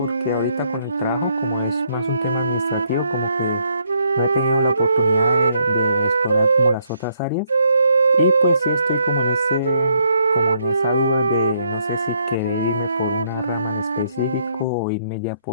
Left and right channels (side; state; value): both; inverted; correlation -0.71